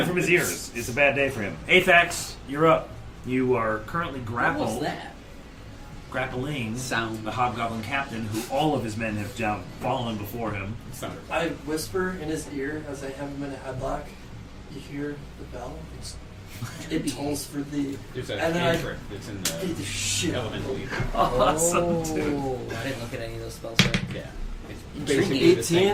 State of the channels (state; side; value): identical; both; correlation 1.00